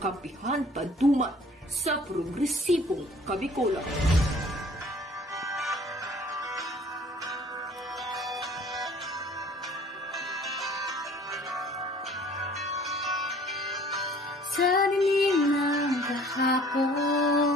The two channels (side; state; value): both; normal; correlation 0.53